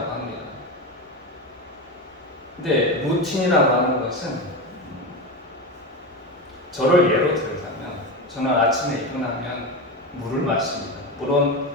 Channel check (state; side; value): normal; both; correlation 0.19